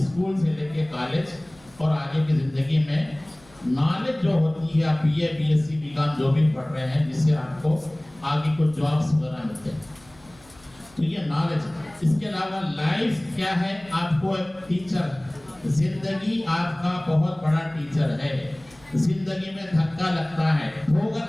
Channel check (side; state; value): left; noise; hum, 27 dB below the sound